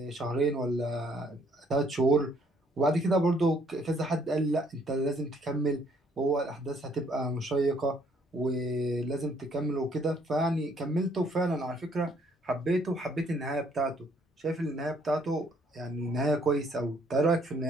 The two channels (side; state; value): both; normal; correlation 0.65